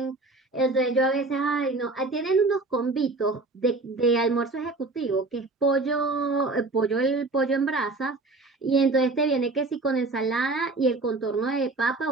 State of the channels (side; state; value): left; quieter; 3.3 dB